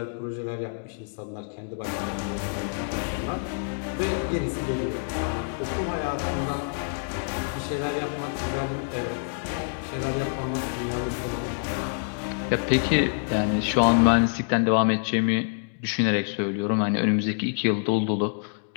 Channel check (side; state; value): right; silent; digital silence